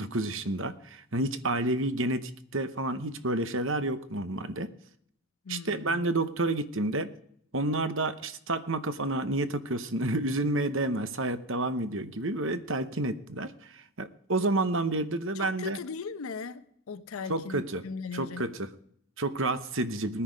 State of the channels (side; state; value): both; normal; correlation 0.18